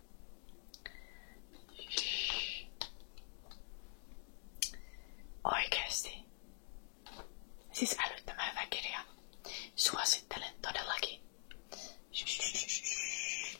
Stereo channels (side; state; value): right; silent; digital silence